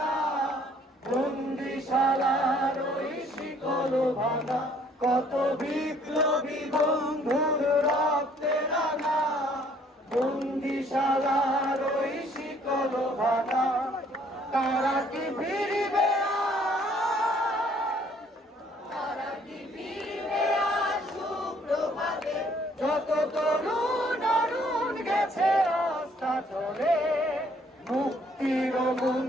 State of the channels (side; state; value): both; normal; correlation 0.62